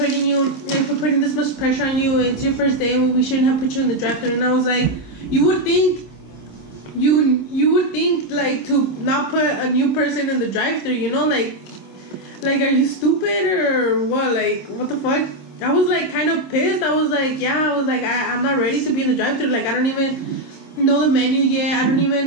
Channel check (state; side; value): late; right; 26 ms